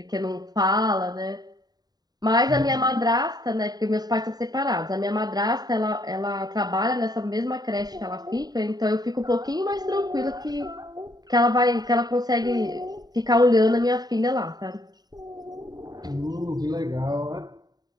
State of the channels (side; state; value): left; late; 0.19 ms